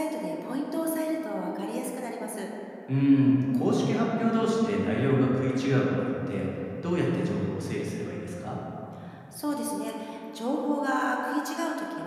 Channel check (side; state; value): both; identical; correlation 1.00